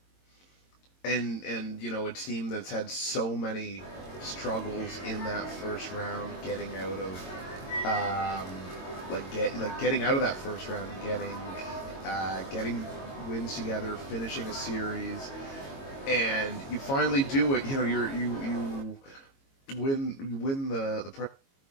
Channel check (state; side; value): late; right; 22 ms